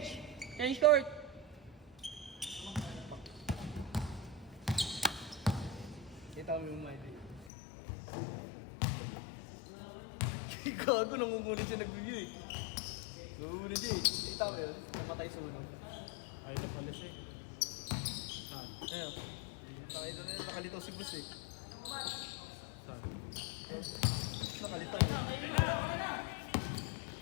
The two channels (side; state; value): right; drops out; at 7.5 s